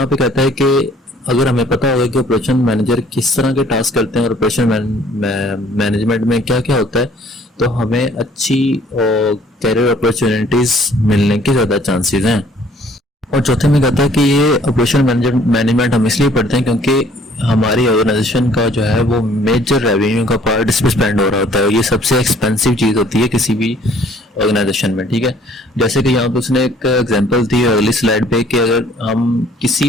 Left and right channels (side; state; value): both; normal; correlation 0.58